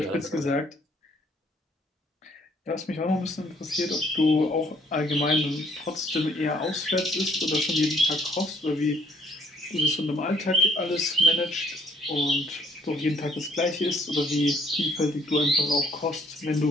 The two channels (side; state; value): both; normal; correlation 0.63